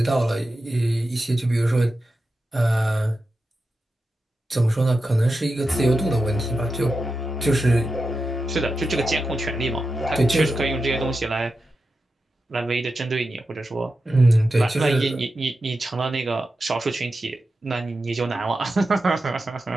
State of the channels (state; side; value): normal; both; correlation 0.90